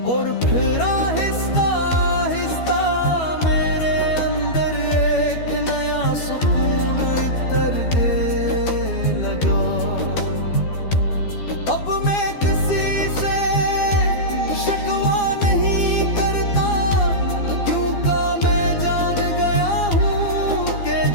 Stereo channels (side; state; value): right; late; 12 ms